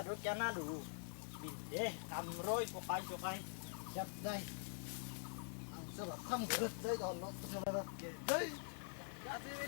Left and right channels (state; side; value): silent; right; digital silence